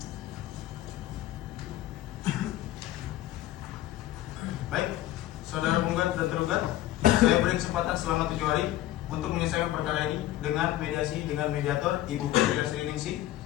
Baik, saudara penggugat dan tergugat, saya beri kesempatan selama 7 hari untuk menyelesaikan perkara ini dengan mediasi dengan mediator Ibu Putri Sriningsih,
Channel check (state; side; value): quieter; right; 14.6 dB